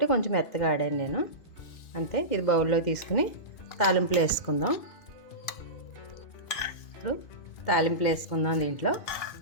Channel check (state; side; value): late; right; 2.5 ms